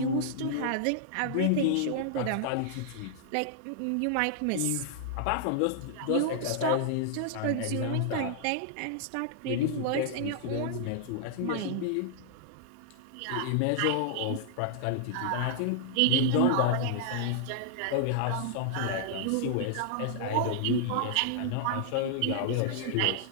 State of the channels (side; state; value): both; different; correlation -0.01